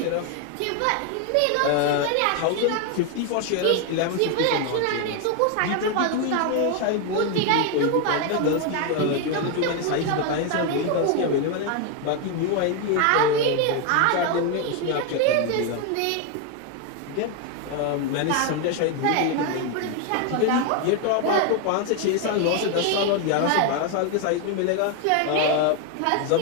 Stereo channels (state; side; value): different; both; correlation 0.01